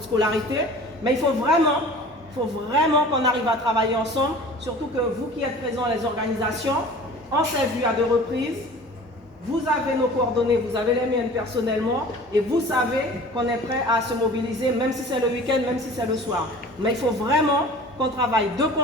scolarité. Mais il faut vraiment qu'on arrive à travailler ensemble. Surtout que vous qui êtes présents, les organisations, on s'est vu à 2 reprises. Vous avez nos coordonnées, vous avez les miennes personnellement et vous savez qu'on est prêt à se mobiliser, même si c'est le week-end, même si c'est le soir. Mais il faut vraiment qu'on travaille de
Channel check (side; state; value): both; normal; correlation 0.43